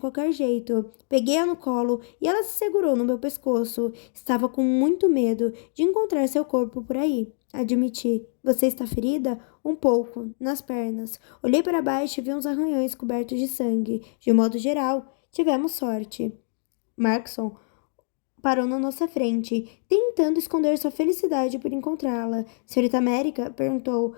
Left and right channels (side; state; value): right; silent; digital silence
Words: jeito. Peguei-a no colo e ela se segurou no meu pescoço. Estava com muito medo de encontrar seu corpo por aí. Admiti. Você está ferida? Um pouco, nas pernas. Olhei para baixo e vi uns arranhões cobertos de sangue. De modo geral, tivemos sorte. Markson parou na nossa frente, tentando esconder sua felicidade por encontrá-la. Senhorita América perguntou,